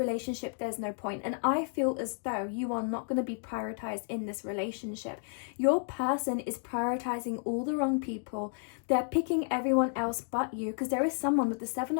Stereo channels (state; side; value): silent; right; 57 dB below the other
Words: there's no point. And I feel as though you are not going to be prioritized in this relationship. Your person is prioritizing all the wrong people. They're picking everyone else but you, because there is someone with the Seven